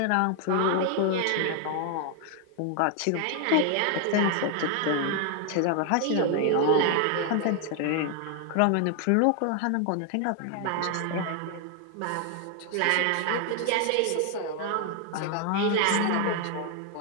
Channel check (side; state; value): both; different; correlation 0.00